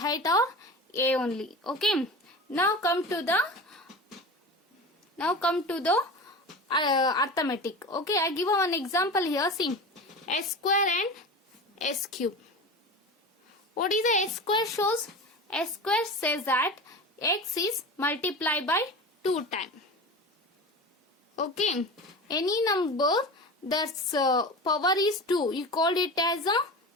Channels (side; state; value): both; normal; correlation 0.31